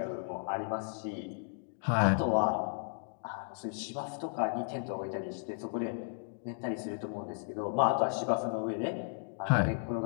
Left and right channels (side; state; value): right; silent; digital silence